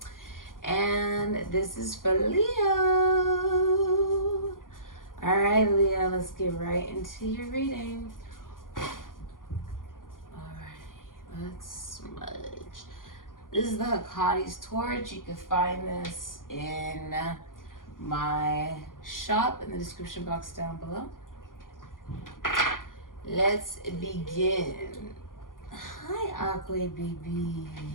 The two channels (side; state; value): right; late; 0.90 ms